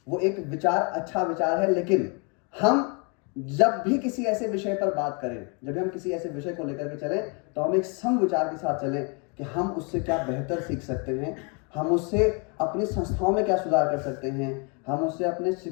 वो एक विचार अच्छा विचार है, लेकिन हम जब भी किसी ऐसे विषय पर बात करें, जब भी हम किसी ऐसे विषय को लेकर के चलें, तो हम एक सम विचार के साथ चलें कि हम उससे क्या बेहतर सीख सकते हैं, हम उससे अपनी संस्थाओं में क्या सुधार कर सकते हैं, हम उससे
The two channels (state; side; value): quieter; right; 34.7 dB